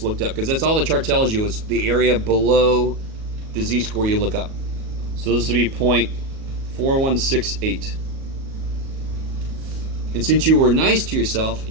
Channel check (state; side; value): late; left; 37 ms